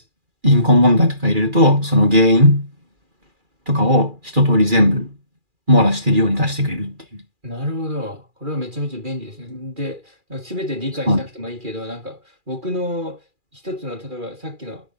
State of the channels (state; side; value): late; left; 2.4 ms